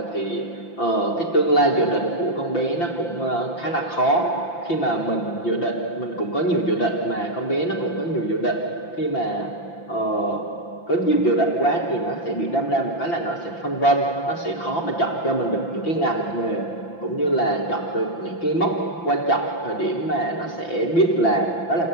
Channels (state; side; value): late; right; 5.9 ms